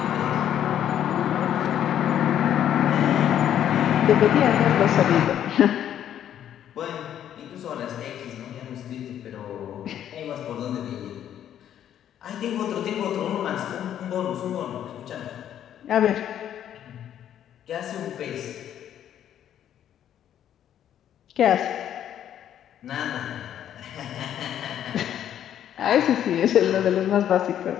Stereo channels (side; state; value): right; quieter; 10.4 dB